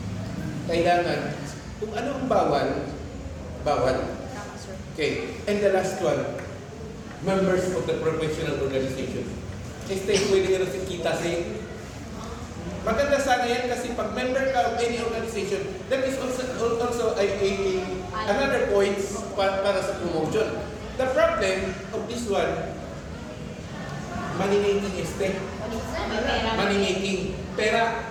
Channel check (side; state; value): both; identical; correlation 1.00